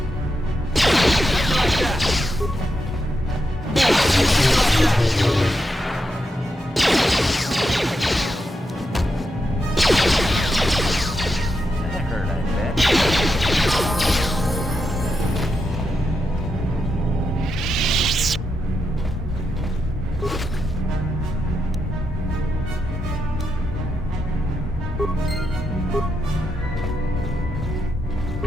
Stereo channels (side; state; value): both; normal; correlation 0.84